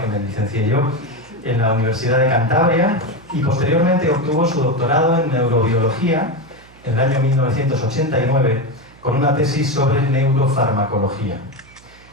me licencié yo, en la Universidad de Cantabria, y posteriormente obtuvo su doctorado en Neurobiología en el año 1989 con una tesis sobre neurofarmacología.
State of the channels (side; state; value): right; noise; hum, 25 dB below the sound